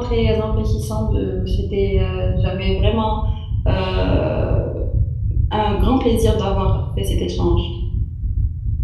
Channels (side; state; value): both; identical; correlation 1.00